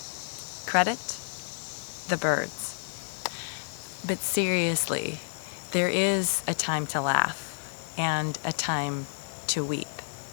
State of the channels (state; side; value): silent; right; digital silence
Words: Credit the Byrds. But seriously, there is a time to laugh and a time to weep.